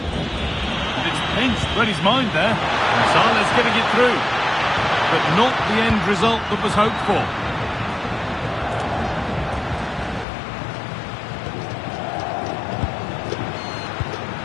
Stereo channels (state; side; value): drops out; right; at 10.2 s